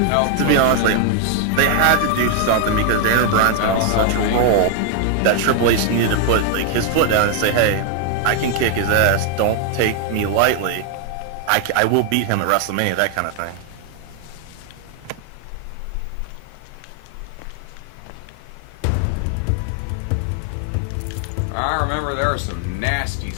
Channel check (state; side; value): different; both; correlation 0.00